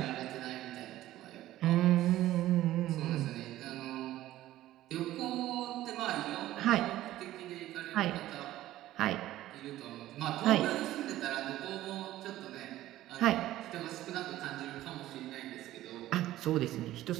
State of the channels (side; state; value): left; quieter; 14.7 dB